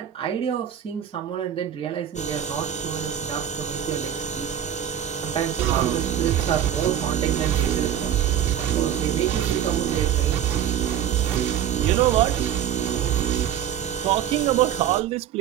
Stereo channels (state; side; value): quieter; left; 10.0 dB